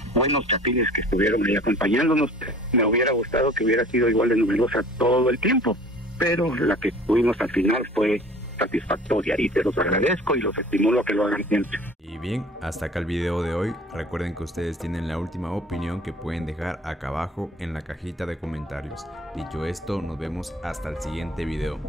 buenos chapines que estuvieron ahí acompañándonos. Me hubiera gustado que hubiera sido igual de numerosa todo el tiempo, pero la que tuvimos al final fue satisfactoria y te los agradezco y los estimulo a que lo hagan siempre. Y bien, hasta acá el video de hoy. Recuerden que ustedes tienen la última opinión que pueden dejar acá abajo en la cajita de comentarios. Dicho esto, nos vemos hasta el siguiente video.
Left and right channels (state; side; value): normal; both; correlation 0.47